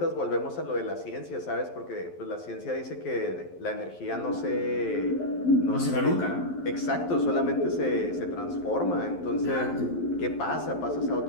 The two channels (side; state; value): right; late; 11 ms